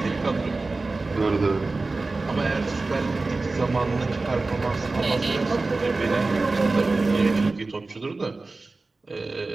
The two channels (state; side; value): quieter; left; 3.5 dB